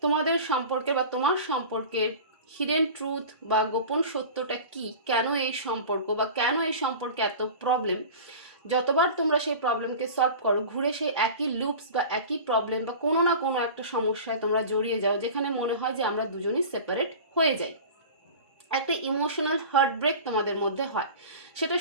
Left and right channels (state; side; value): inverted; both; correlation -0.36